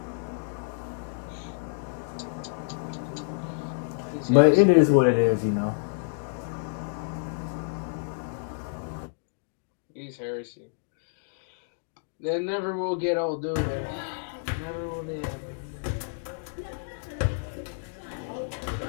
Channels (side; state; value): right; silent; digital silence